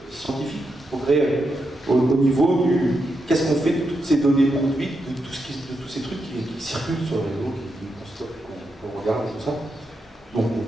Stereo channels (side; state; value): both; normal; correlation 0.84